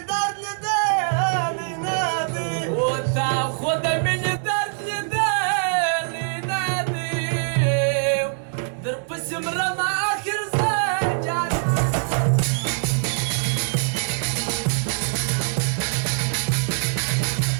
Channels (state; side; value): silent; left; digital silence